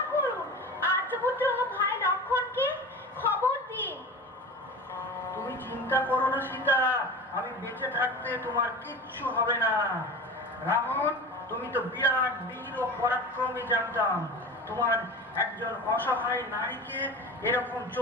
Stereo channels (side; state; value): both; normal; correlation 0.33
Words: করুন। আর্যপুত্র ভাই লক্ষণকে খবর দিন। তুমি চিন্তা করো না সীতা, আমি বেঁচে থাকতে তোমার কিচ্ছু হবে না। রাবণ, তুমি তো বিরাট বীর ও পরাক্রমী জানতাম। তোমার একজন অসহায় নারীকে এরকম